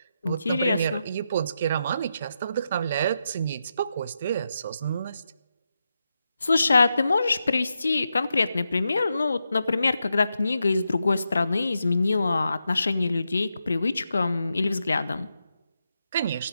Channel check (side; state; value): both; inverted; correlation -0.86